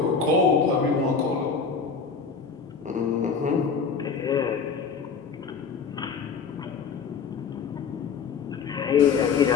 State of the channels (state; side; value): quieter; right; 5.7 dB